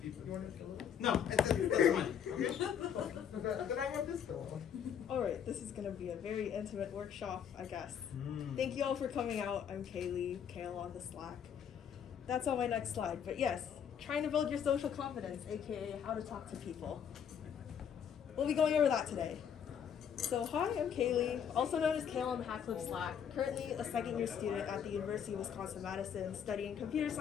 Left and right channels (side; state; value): right; quieter; 8.2 dB